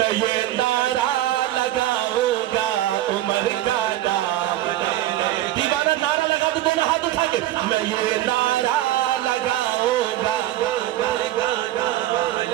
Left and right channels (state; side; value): quieter; left; 14.3 dB